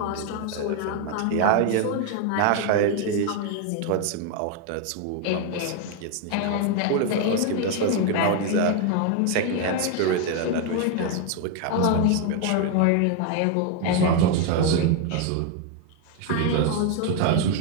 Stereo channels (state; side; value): different; both; correlation 0.01